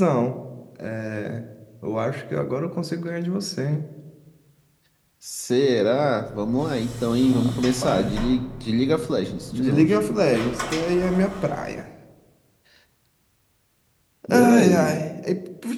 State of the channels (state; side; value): identical; both; correlation 1.00